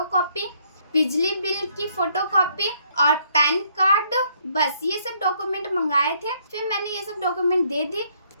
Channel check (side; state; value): both; inverted; correlation -0.68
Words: बिजली बिल की फोटोकॉपी और पैन कार्ड, बस ये सब डॉक्यूमेंट मंगाए थे। फिर मैंने ये सब डॉक्यूमेंट दे दी।